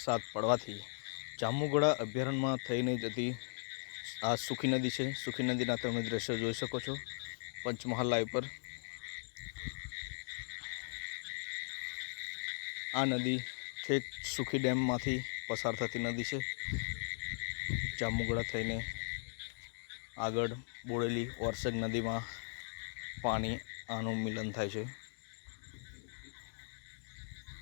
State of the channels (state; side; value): silent; right; digital silence